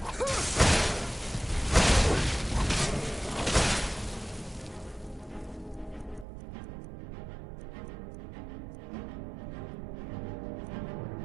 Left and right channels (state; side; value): drops out; left; at 6.2 s